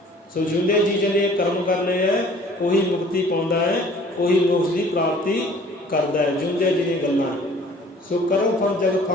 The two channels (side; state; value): both; normal; correlation 0.52